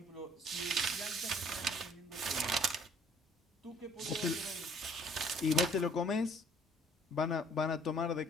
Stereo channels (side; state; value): both; normal; correlation 0.58